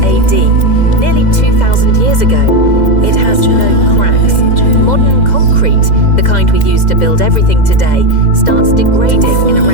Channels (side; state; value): right; late; 2.0 ms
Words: AD, nearly 2,000 years ago. It has no cracks. Modern concrete, the kind we use to build everything today, starts degrading in